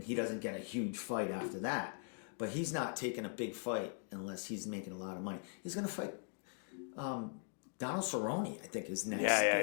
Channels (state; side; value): silent; right; 51 dB below the other